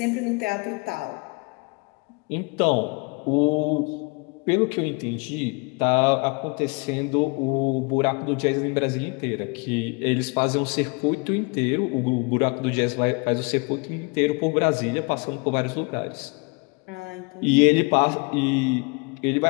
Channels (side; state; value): right; quieter; 31.3 dB